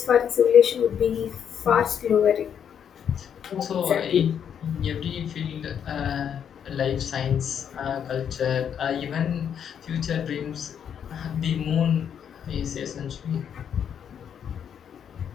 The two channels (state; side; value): quieter; right; 8.4 dB